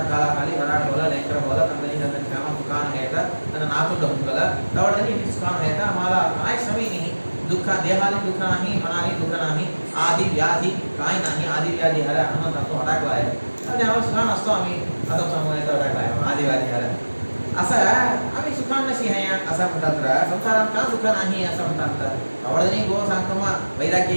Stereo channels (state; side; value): inverted; both; correlation -1.00